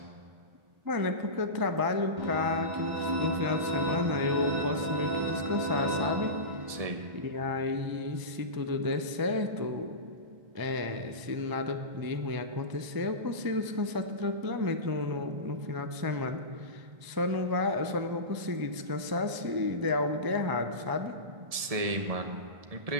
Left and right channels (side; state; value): left; late; 1.7 ms